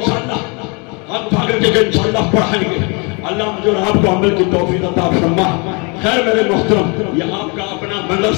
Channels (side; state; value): right; quieter; 31.8 dB